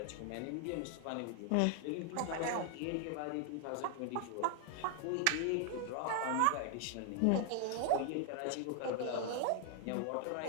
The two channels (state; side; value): different; both; correlation 0.00